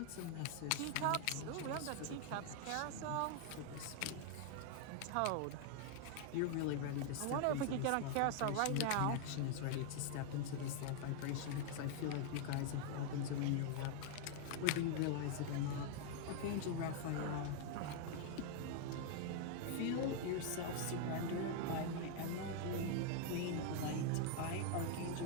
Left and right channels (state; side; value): different; both; correlation 0.00